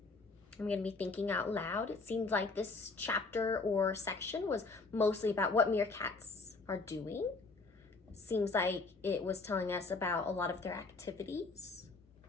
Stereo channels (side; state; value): right; quieter; 3.8 dB